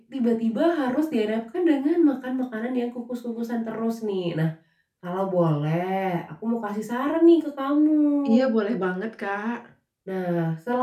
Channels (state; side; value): identical; both; correlation 1.00